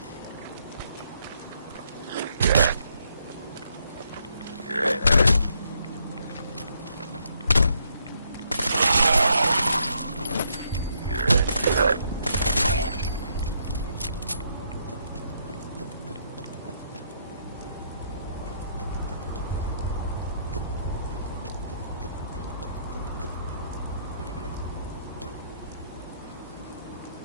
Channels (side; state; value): both; inverted; correlation -0.73